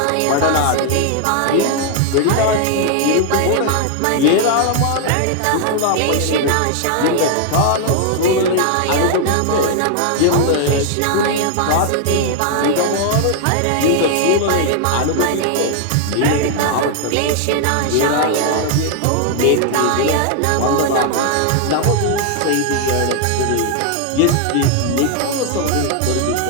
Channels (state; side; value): different; both; correlation 0.00